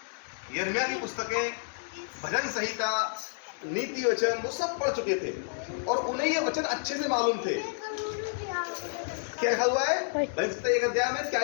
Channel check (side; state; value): right; silent; digital silence